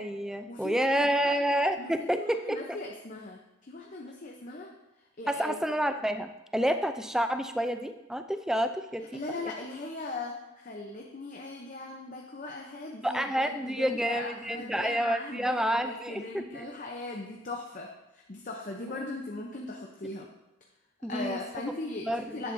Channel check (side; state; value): both; normal; correlation 0.76